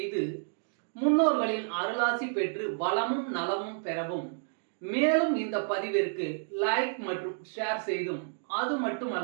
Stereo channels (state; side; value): silent; left; digital silence